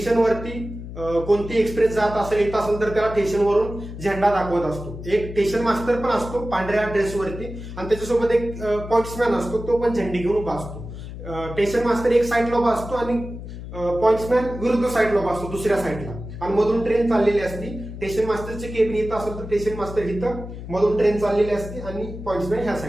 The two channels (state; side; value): noise; left; hum, 10 dB below the sound